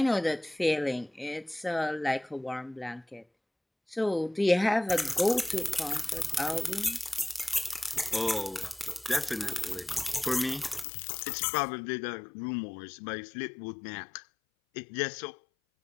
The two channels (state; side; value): drops out; right; at 10.9 s